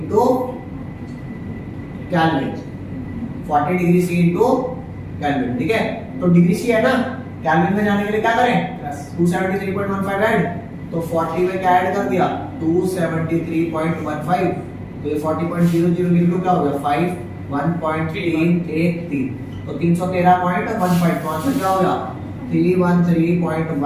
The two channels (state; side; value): identical; both; correlation 1.00